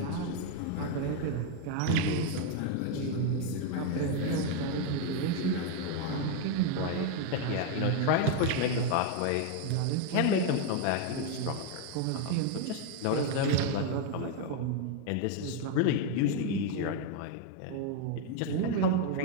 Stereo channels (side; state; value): both; different; correlation 0.01